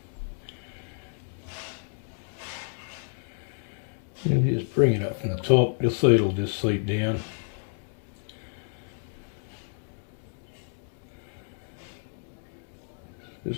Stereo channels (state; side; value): silent; right; 58 dB below the other